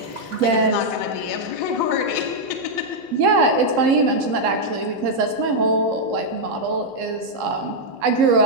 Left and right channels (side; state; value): left; late; 3.8 ms